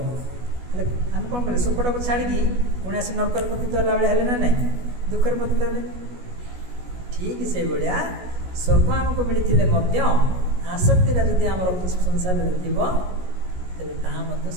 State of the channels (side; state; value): left; late; 16 ms